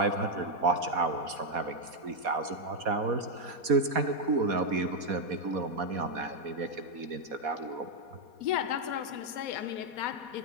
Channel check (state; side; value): late; left; 4.2 ms